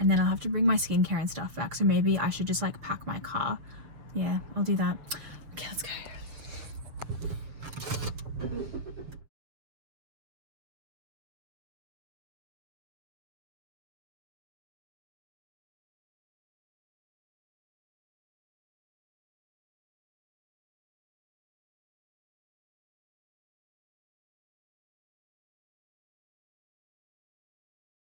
then I'll have to bring my skincare and stuff back, so maybe I should just like pack my car. Yeah, I'll do that. Okay, let's go.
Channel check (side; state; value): left; late; 6.7 ms